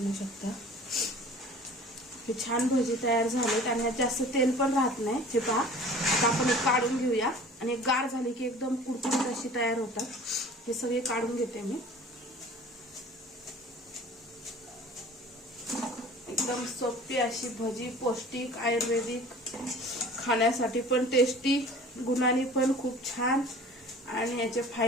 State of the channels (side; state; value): both; normal; correlation 0.45